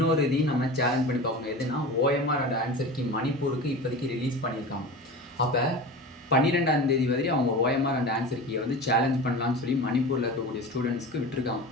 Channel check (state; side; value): normal; both; correlation 0.31